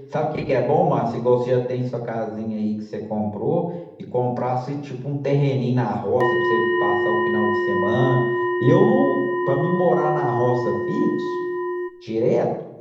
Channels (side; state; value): both; identical; correlation 1.00